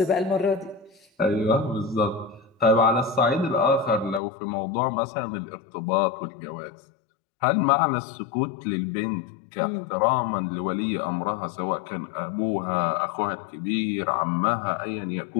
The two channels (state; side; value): drops out; right; at 4.2 s